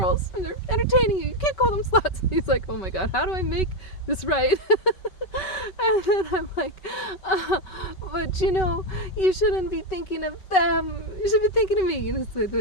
and they're entertaining you. You can't call them sluts. He's like, oh my God, how do I make this right? And then I'm like, but you shouldn't be thinking of them. You should be thinking of me. It's the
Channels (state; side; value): late; right; 5.3 ms